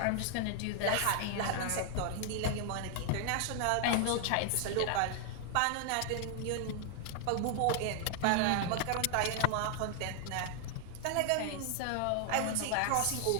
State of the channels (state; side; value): different; both; correlation 0.00